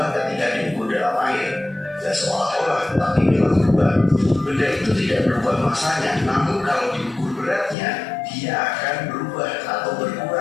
ketika diukur dalam air. Dan seolah-olah, tapi memang berubah. Benda itu tidak berubah masanya, namun kalau diukur beratnya, dia akan berubah atau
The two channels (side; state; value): right; drops out; at 7.8 s